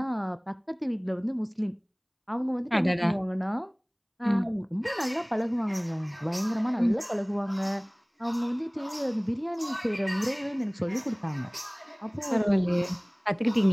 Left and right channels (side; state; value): both; identical; correlation 1.00